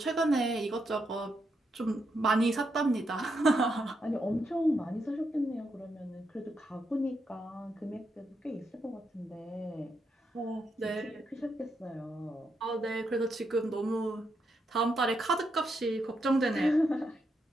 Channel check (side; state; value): both; normal; correlation 0.81